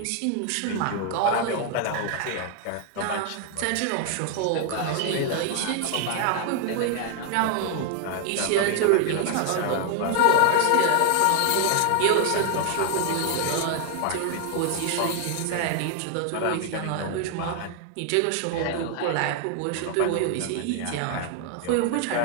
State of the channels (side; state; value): both; different; correlation 0.00